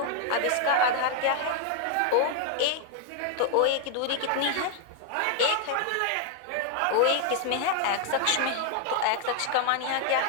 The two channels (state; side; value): different; both; correlation 0.00